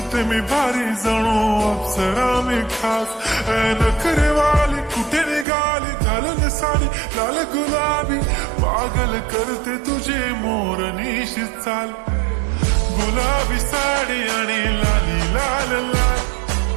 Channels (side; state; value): left; drops out; at 5.5 s